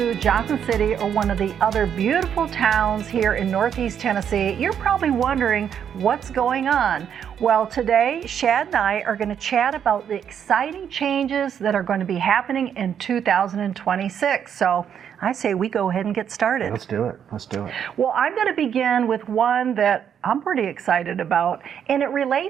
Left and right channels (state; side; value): quieter; left; 8.5 dB